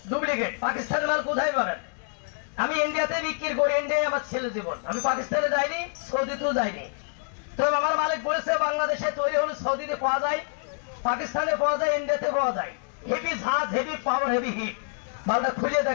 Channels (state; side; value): silent; right; 60 dB below the other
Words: ডুপ্লিকেট। পাকিস্তানের মাল কোথায় পাবেন? আমি ইন্ডিয়াতে বিক্রি করি, ইন্ডিয়ায় আমার ছেলে জীবন। আমি পাকিস্তানে যাইনি, সৌদিতেও যাইনি। তো আমার মালিক বলেছে বাংলাদেশে তৈরি হলে সৌদিতে পাওয়া যায়, পাকিস্তানে পাওয়া যায়, ইন্ডিয়াতে পাওয়া যায়। হেভি ঝাঁজ, হেভি পাওয়ার, হেভি হিট। মালটা খুলে